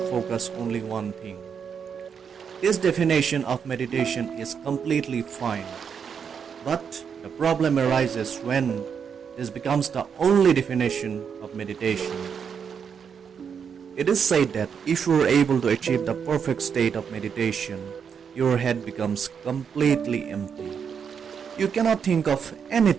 focus only one thing. This definition of meditation is completely fine, but the problem arises when this becomes the only definition of meditation. It is said that if you are able to achieve the perfect state of meditation, your head becomes completely empty. You cannot think of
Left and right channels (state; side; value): quieter; left; 7.0 dB